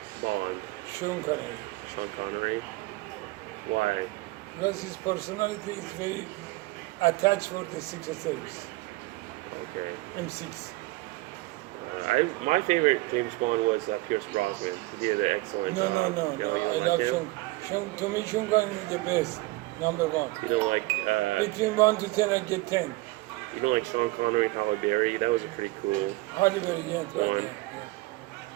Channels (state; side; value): quieter; left; 20.8 dB